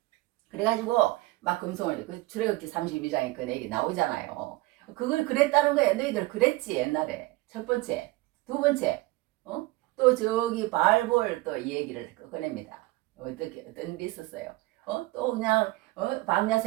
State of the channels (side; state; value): left; quieter; 20.7 dB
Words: 그래가지고 막 금송아지, 그 출애굽기 32장에 그 얘기 나오잖아요. 그걸 그랬다는 거야. 너희들 그랬지 옛날에. 첫 번째. 두 번째, 또 저기 바알볼 또 이 얘기를 꺼냅니다. 어떤 일이 있었어요. 또 그냥 광야